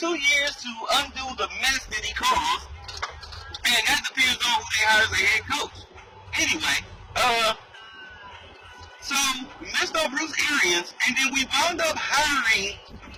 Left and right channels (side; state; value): both; identical; correlation 1.00